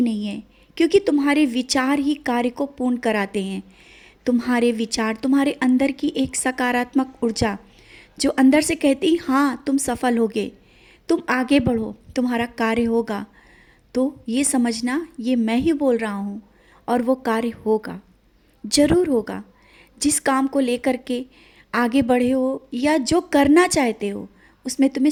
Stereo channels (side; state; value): both; identical; correlation 1.00